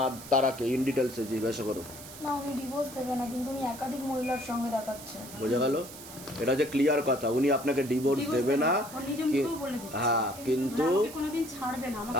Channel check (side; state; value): right; noise; hiss, 15 dB below the sound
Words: তারাকে, ইন ডিটেলসে জিজ্ঞাসা করো। না, উনি ডিভোর্স দেবে না, কিন্তু উনি একাধিক মহিলার সঙ্গে দেখাচ্ছে। বোঝা গেল? এটা যে ক্লিয়ার কথা, উনি আপনাকে ডিভোর্স দেবে না। হ্যাঁ, কিন্তু